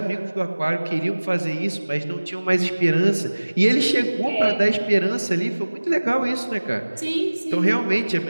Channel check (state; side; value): inverted; both; correlation -1.00